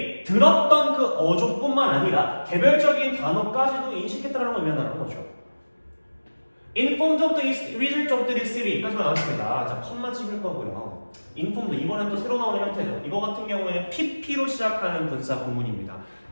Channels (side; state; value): both; inverted; correlation -1.00